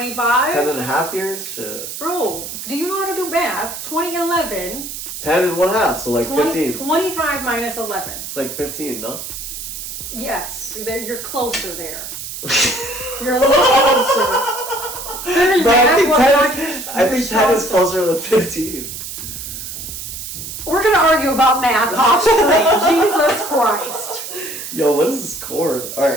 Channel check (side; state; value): right; noise; hiss, 8 dB below the sound